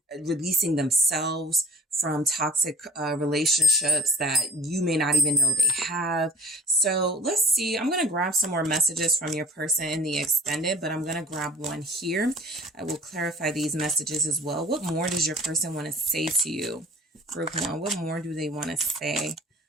releasing themselves from toxic relationships that you may not even know they have. So let's see. I'm going to grab some more messages from your person in the extended, but I'm going to grab one here. I will clarify these messages as well. What more does your person want to say to you? Group 1, what more do they want to say?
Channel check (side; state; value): both; normal; correlation 0.47